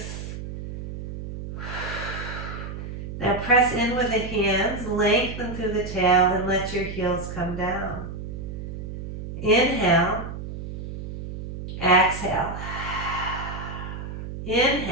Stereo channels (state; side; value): noise; right; hum, 8 dB below the sound